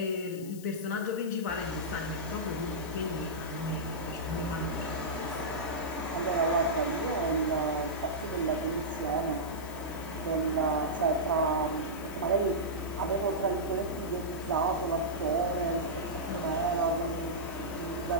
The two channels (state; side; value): noise; left; hiss, 17 dB below the sound